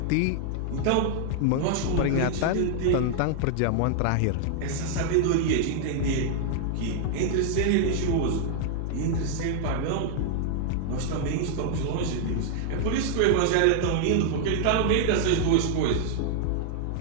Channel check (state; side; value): different; both; correlation -0.01